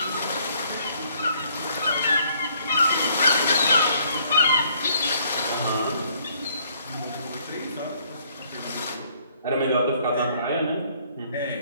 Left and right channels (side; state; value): both; inverted; correlation -0.65